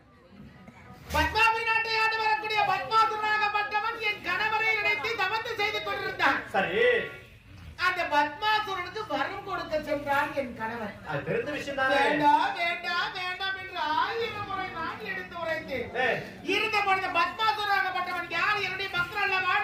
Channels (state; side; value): identical; both; correlation 1.00